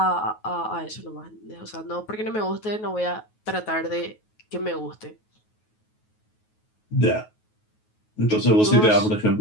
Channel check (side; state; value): right; late; 9.3 ms